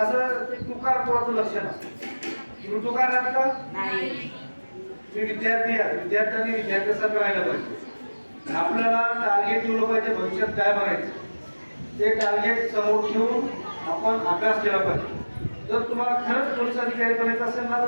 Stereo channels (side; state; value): both; inverted; correlation -1.00